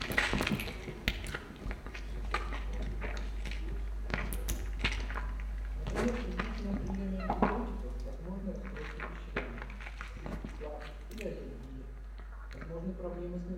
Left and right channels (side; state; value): both; identical; correlation 1.00